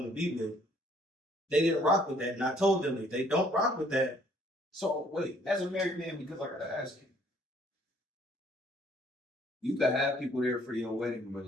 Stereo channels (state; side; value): normal; both; correlation 0.62